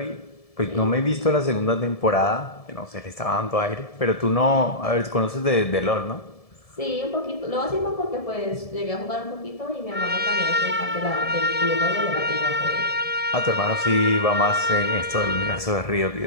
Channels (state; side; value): late; right; 1.7 ms